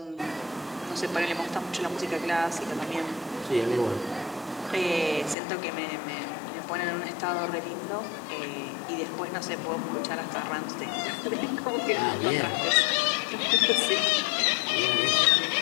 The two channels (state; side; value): drops out; right; at 5.4 s